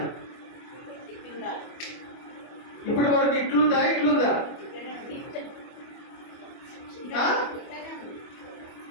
ఇప్పటి వరకు ఇట్లుందా?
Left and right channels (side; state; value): right; late; 25 ms